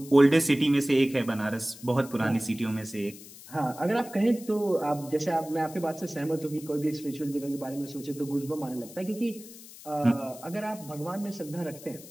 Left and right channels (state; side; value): noise; left; hiss, 17 dB below the sound